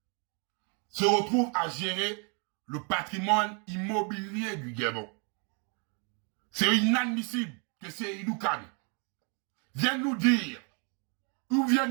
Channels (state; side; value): quieter; left; 37.0 dB